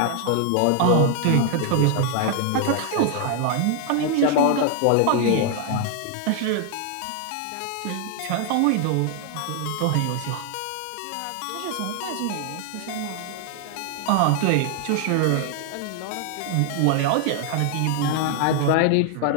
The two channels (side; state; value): both; different; correlation 0.00